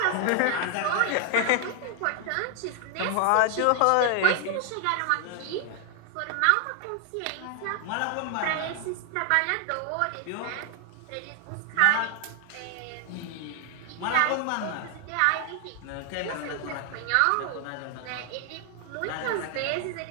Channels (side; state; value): both; different; correlation 0.00